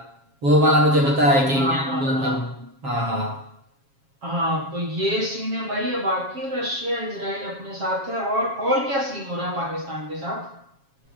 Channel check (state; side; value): late; left; 7.3 ms